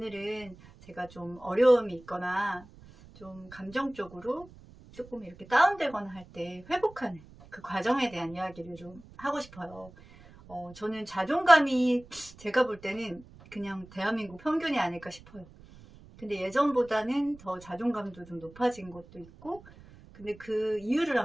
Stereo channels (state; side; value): noise; right; rumble, 21 dB below the sound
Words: 제가 좀 어려움이 있거나 좀 감정적으로 조금 이렇게 다운되거나 할 때 회복하는 그 과정에 대한 이야기를 좀 하고 싶어요. 저는 자존감이 제가 볼 때는 그냥 대한민국 평균이 아닐까 싶어요. 근데 예전보다는 더 자존감도 좀 높아진 것도 있고, 근데 그 이유를